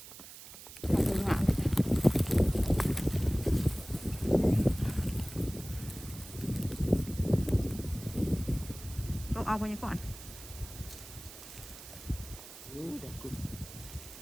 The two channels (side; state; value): right; noise; hiss, 15 dB below the sound